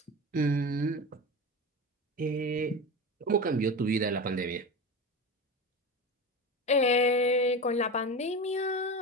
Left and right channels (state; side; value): normal; both; correlation 0.25